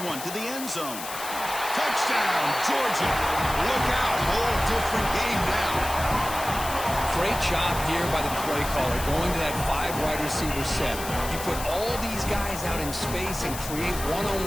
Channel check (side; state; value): left; noise; hiss, 9 dB below the sound